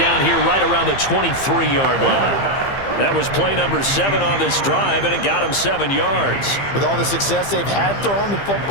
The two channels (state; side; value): late; right; 15 ms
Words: here right around the 23-yard line. That was play number 7 on this drive, and it got him 7 yards. With all the success they've had throwing the